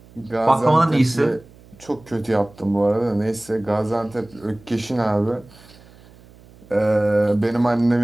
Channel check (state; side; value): noise; right; hum, 25 dB below the sound